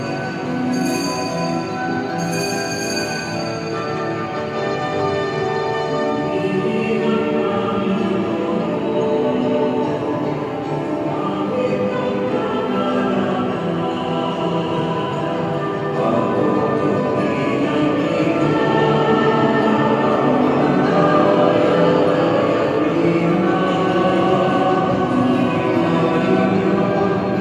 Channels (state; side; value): identical; both; correlation 1.00